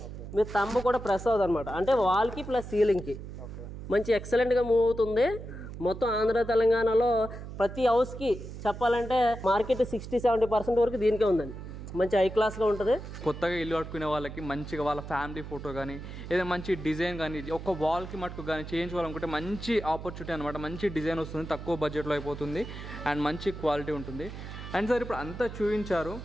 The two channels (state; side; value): noise; right; hum, 10 dB below the sound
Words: మీ తంబు కూడా ప్రెస్ అవుతుంది అనమాట, అంటే వాల్కి ప్లస్ సీలింగ్కి మంచి ఎక్సలెంట్గా మూవ్ అవుతుంది. మొత్తం ఆంధ్ర తెలంగాణలో ప్రతి హౌస్కి చెప్పాలంటే మార్కెట్ 60-70% వరకు దీనికే ఉందండి. మంచి హై క్లాస్గా ఉంటుంది. కొత్తగా ఇల్లు కట్టుకునే వాళ్ళకి మంచిగా వాళ్ళ ఫ్యామిలీ ఫోటో కానీ ఏదైనా మంచి డిజైన్ కానీ ఒక వాల్కి మటుకు కానీ చేయించుకోవాలనుకుంటే మంచి ఆపర్చునిటీ అనమాట. మంచి డిజైన్ వస్తుంది, తక్కువ బడ్జెట్లో అయిపోతుంది అండ్ మంచి క్వాలిటీ ఉంటుంది. అండ్ సార్ ఇప్పుడు అంతా చూపించారు,